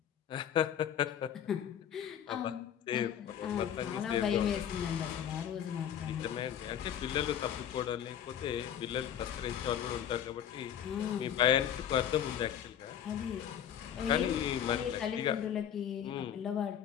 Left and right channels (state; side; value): quieter; right; 9.5 dB